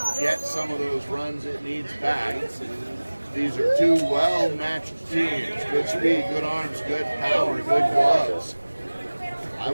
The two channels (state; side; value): inverted; both; correlation -1.00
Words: get some of those runs it needs back. These are two well-matched teams. Good speed, good arms, good power, good gloves. I